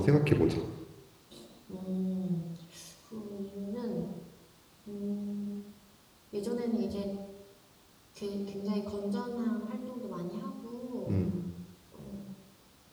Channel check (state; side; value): identical; both; correlation 1.00